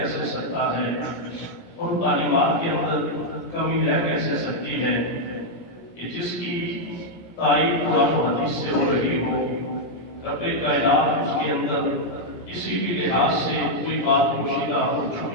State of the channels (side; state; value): right; late; 17 ms